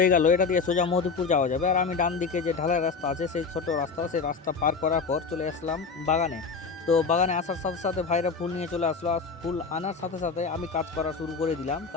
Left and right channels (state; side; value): quieter; right; 5.0 dB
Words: গেল, এটা দিয়ে সোজা মধুপুর যাওয়া যাবে। আর আমি ডান দিকে যে ঢালাই রাস্তা আছে, সেই ছোট রাস্তা, সেই রাস্তা পার করার পর চলে আসলাম বাগানে। তো বাগানে আসার সাথে সাথে ভাইরা ফুল নিয়ে চলে আসলো। আর ফুল আনার সাথে সাথে আমি কাজ করা শুরু করে দিলাম,